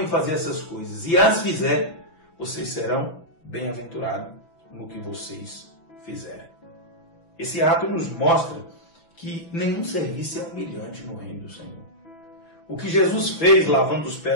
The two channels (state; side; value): late; right; 6.0 ms